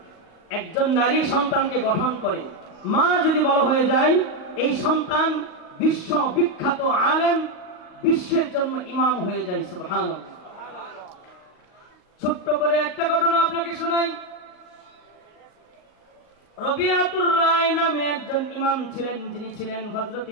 একজন নারী সন্তানকে গঠন করে। মা যদি বড় হয়ে যায়, এই সন্তান বিশ্ব বিখ্যাত আলেম, বিশ্বের জন্য ইমাম হয়ে যায়। সুবহানাল্লাহ। ছোট্ট করে একটা ঘটনা আপনাকে শোনাই। রবিআতুর রায় নামে একজন ইমাম ছিলেন, যিনি ছিলেন হযরত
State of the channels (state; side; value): late; right; 38 ms